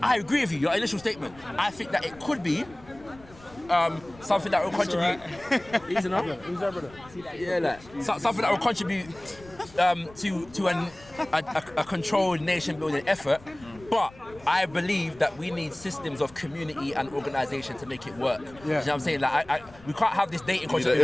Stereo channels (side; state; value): left; noise; rumble, 22 dB below the sound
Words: I agree with you. Your initial statement. I think that it could be. Something that will contribute. Easy enough? Something that will contribute to a controlled nation building effort. But I believe that we need systems of community and organisation to make it work. You know what I'm saying? Like, we can't have this dating culture that